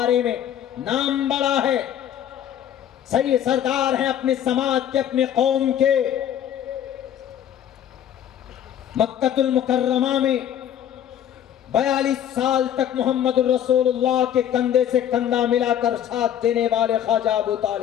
میں نام بڑا ہے، صحیح سردار ہیں اپنے سماج کے، اپنے قوم کے. مکہ المکرمہ میں 42 سال تک محمد الرسول اللہ کے کندھے سے کندھا ملا کر ساتھ دینے والے خواجہ ابو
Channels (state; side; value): quieter; right; 10.1 dB